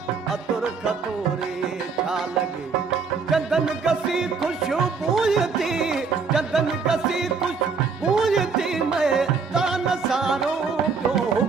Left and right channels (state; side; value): quieter; left; 5.1 dB